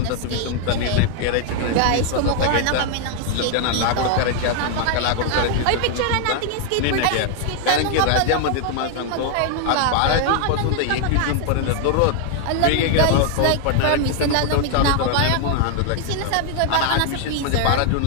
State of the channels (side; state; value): both; different; correlation 0.00